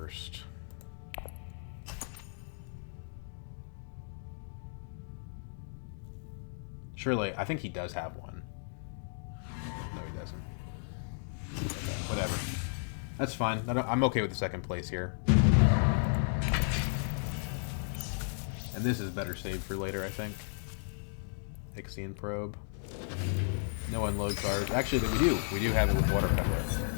Surely, I think he does have one. No, he doesn't. Okay, whatever. That's fine. I'm okay with the second place here. And this is better saved for later, I think. Ixion Probe. No unload cards. Actually, we do. We do have it with Water Peddler.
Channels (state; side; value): silent; right; digital silence